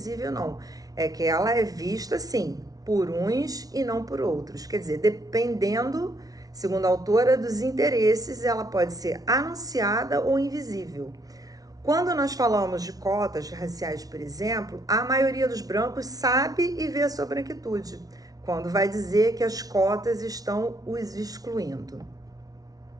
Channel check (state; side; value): late; left; 0.18 ms